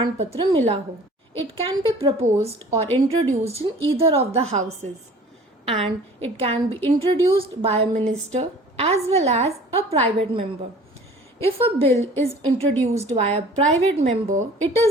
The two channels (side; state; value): both; normal; correlation 0.47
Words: पत्र मिला हो. It can be proposed or introduced in either of the houses and it can be introduced by a minister as well as a private member. If a bill is introduced by a private member, it